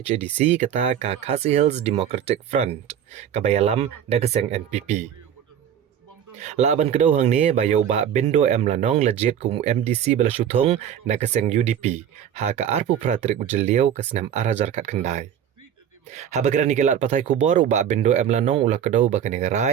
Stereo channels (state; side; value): quieter; left; 9.2 dB